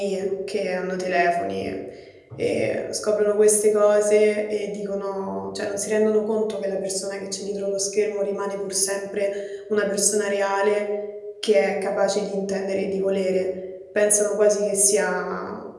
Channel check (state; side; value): identical; both; correlation 1.00